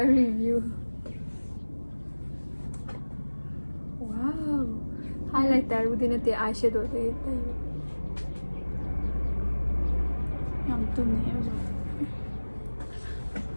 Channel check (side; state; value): both; inverted; correlation -1.00